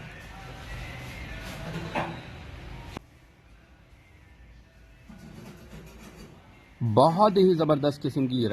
बहुत ही ज़बरदस्त किस्म की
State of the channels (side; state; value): both; identical; correlation 1.00